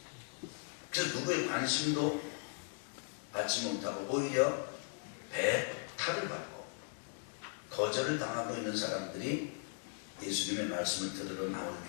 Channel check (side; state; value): right; silent; 52 dB below the other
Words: 그래서 누구의 관심도 받지 못하고 오히려 배탈을 받고 거절을 당하고 있는 사람들이 예수님의 말씀을 들으러 나올